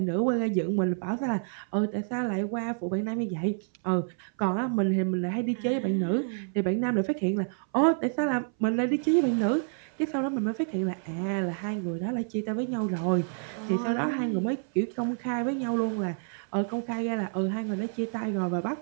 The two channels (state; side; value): silent; left; 59 dB below the other